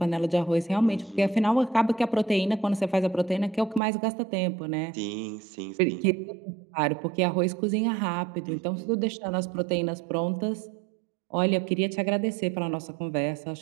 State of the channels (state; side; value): drops out; left; at 3.8 s